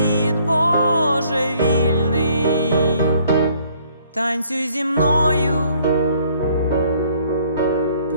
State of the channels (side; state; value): both; inverted; correlation -0.62